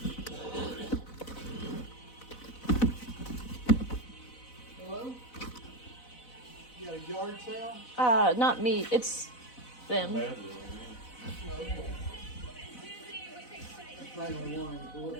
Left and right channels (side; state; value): right; late; 4.0 ms